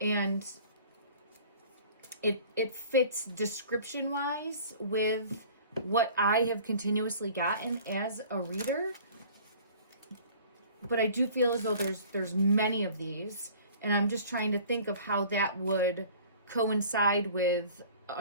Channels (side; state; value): both; inverted; correlation -0.47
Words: it fits description-wise with what I have continuously gotten as a reader. But I do feel as though there's many of these. And I'm just trying to think of how that would coincide with